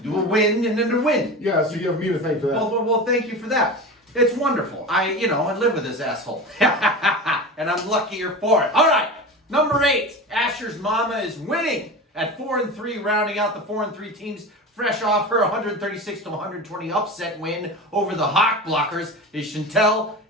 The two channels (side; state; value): both; normal; correlation 0.29